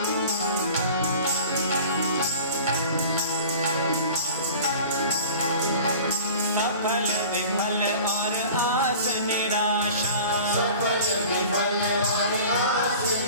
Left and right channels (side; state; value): both; inverted; correlation -0.42